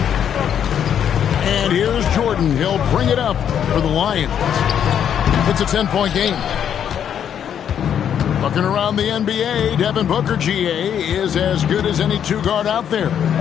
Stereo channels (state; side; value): quieter; right; 8.9 dB